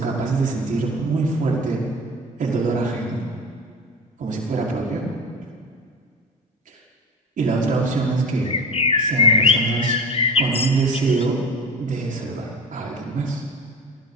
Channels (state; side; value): normal; both; correlation 0.32